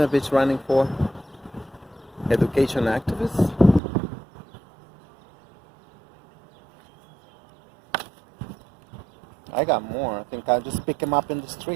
bitch running for? Education activist? I got more. I think I'll just pick them up in the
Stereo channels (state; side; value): drops out; left; at 3.8 s